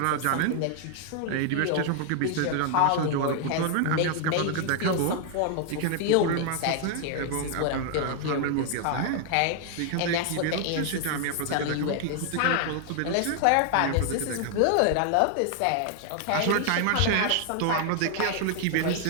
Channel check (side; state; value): both; different; correlation 0.00